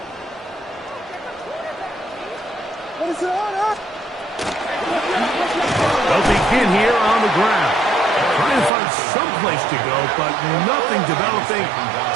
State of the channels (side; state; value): left; drops out; at 8.7 s